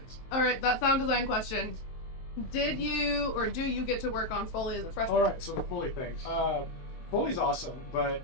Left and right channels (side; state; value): right; late; 23 ms